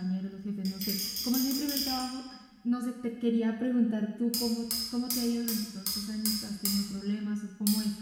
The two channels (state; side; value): identical; both; correlation 1.00